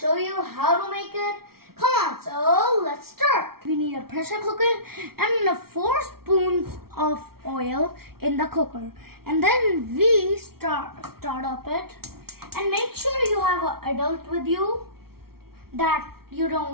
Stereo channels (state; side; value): late; left; 0.94 ms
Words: you how to make it. Come on, so let's start. We need a pressure cooker and 4 spoons of oil in the cooker. And then we start up it. And make sure you have an adult with you that you